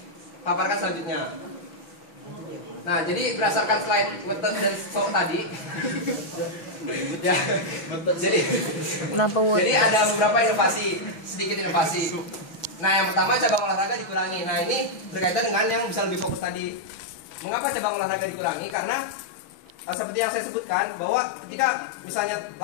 selanjutnya. Nah jadi berdasarkan slide Wetet dan So tadi ya, jadi ada beberapa inovasi, sedikit inovasi. Nah yang pertama cabang olahraga dikurangi. Nah ini berkaitan dengan yang bisa lebih fokus tadi. Mengapa cabang olahraga dikurangi? Karena seperti yang saya sebutkan bahwa ketika misalnya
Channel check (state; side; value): late; right; 6.1 ms